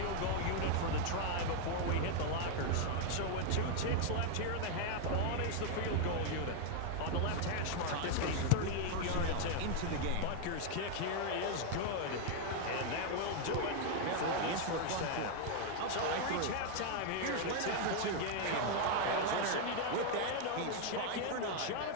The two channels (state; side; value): different; both; correlation 0.00